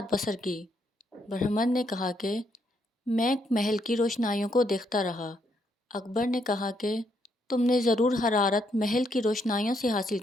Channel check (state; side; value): normal; both; correlation 0.75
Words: بسر کی؟ برہمن نے کہا کہ میں محل کی روشنائیوں کو دیکھتا رہا۔ اکبر نے کہا کہ تم نے ضرور حرارت محل کی روشنائیوں سے حاصل